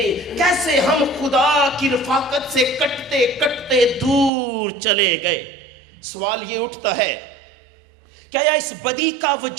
کیسے ہم خدا کی رفاقت سے کٹتے کٹتے دور چلے گئے؟ سوال یہ اٹھتا ہے، کیا اس بدی کا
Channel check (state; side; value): drops out; left; at 4.3 s